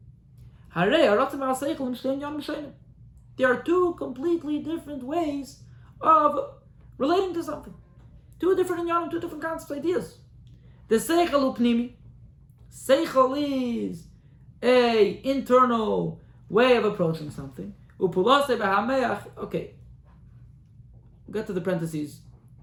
There are two completely different ways of relating to something. Two different inyanim, two different concepts, ideas. The seichel upnimi. Seichel is a internal way of approaching something. Okay. We'll get to the parentheses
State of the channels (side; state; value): both; identical; correlation 1.00